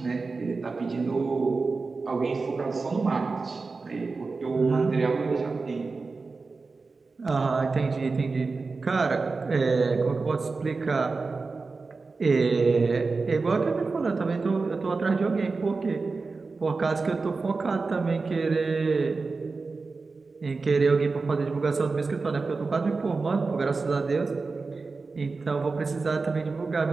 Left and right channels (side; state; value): left; quieter; 4.1 dB